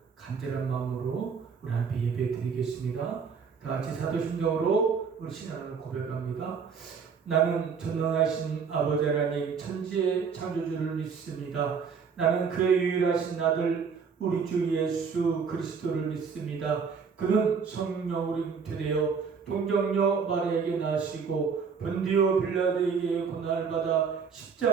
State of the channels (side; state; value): left; quieter; 5.9 dB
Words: 간절한 마음으로 우리 하나님께 예배드리겠습니다. 다 같이 사도심정으로 우리 신앙을 고백합니다. 나는 전능하신 아버지 하나님 천지의 창조주를 믿습니다. 나는 그의 유일하신 아들 우리 주 예수 그리스도를 믿습니다. 그는 성령으로 잉태되어 동정녀 마리아에게 나시고 본디오 빌라도에게 고난을 받아